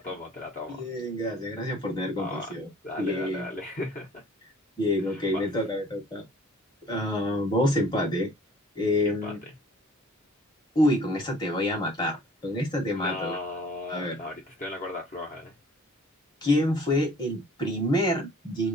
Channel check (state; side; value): normal; both; correlation 0.52